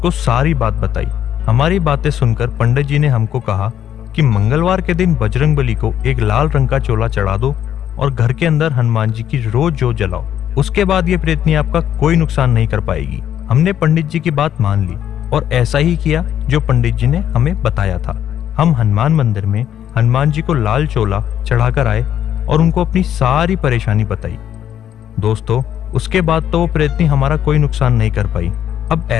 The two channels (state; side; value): quieter; right; 10.2 dB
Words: सारी बात बताई। हमारी बातें सुनकर पंडित जी ने हमको कहा कि मंगलवार के दिन बजरंगबली को एक लाल रंग का चोला चढ़ा दो और घर के अंदर हनुमान जी की रोज जोत जलाओ। उसके बाद ये प्रेतनी आपका कोई नुकसान नहीं कर पाएगी। हमने पंडित जी की बात मान ली और ऐसा ही किया जो पंडित जी ने हमें बताया था। हम हनुमान मंदिर में हनुमान जी को लाल चोला चढ़ाकर आए और उनको अपनी सारी परेशानी बताई। दोस्तों उसके बाद तो वो प्रेतनी हमारा कोई नुकसान नहीं कर पाई। अब